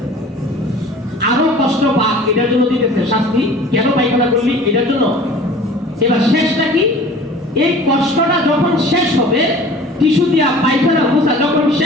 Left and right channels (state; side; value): normal; both; correlation 0.45